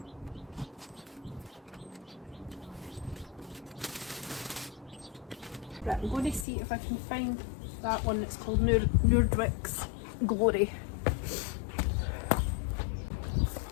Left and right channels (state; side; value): drops out; right; at 6.5 s